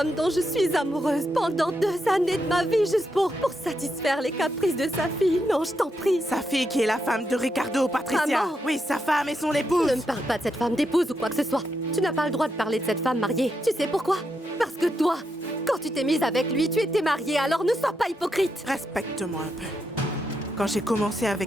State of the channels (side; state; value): both; normal; correlation 0.82